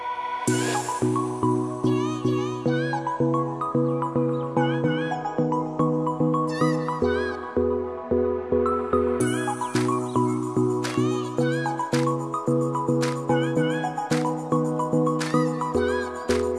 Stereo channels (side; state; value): both; identical; correlation 1.00